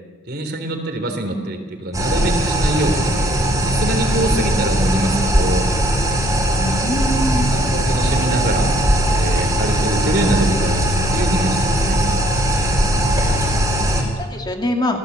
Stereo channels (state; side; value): normal; both; correlation 0.64